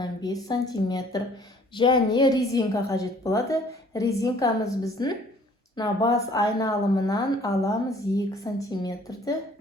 см. Және резинка қажет болады. Резинкамыз біздің бас айналымынан аламыз 2 см-ді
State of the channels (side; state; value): both; normal; correlation 0.56